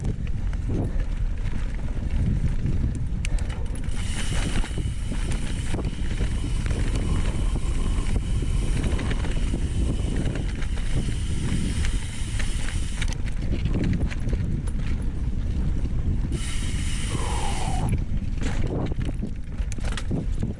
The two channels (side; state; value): both; identical; correlation 1.00